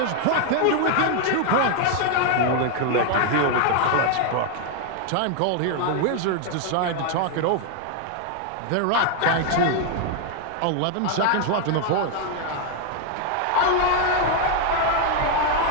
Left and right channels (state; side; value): different; both; correlation 0.00